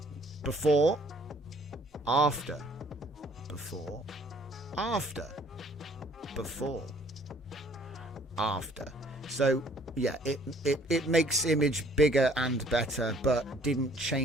before, after, before, after, before, after. So yeah, it makes image bigger and better, but didn't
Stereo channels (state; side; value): normal; both; correlation 0.58